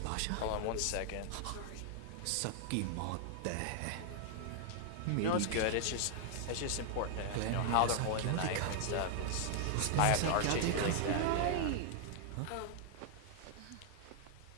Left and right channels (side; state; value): both; different; correlation 0.00